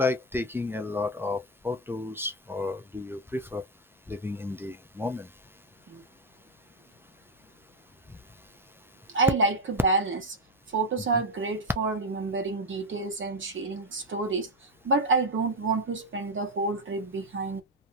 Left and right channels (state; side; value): normal; both; correlation 0.06